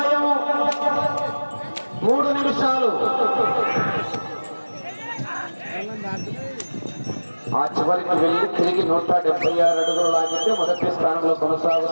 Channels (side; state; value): both; inverted; correlation -1.00